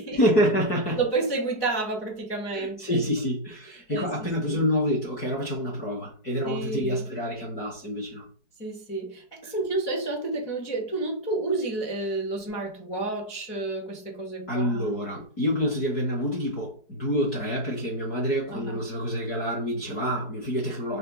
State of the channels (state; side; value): late; right; 4.7 ms